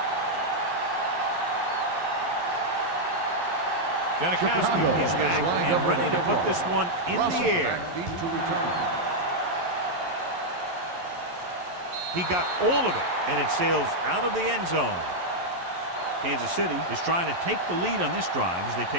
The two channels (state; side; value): late; left; 11 ms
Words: Janikowski is back and ready to put this one in the air. Deep to return. He got all of it, and it sails out of the end zone. Kansas City is trying to take the lead on this drive as they